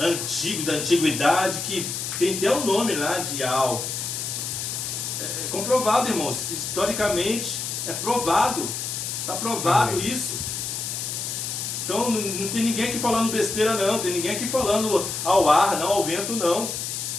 da antiguidade, que tem até o nome lá de Ial. É comprovado, irmãos, historicamente é provado, está provado isso. Então não tem ninguém aqui falando besteira não, tem ninguém aqui falando ao ar, não, ao vento não.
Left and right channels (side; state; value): left; noise; hiss, 4 dB below the sound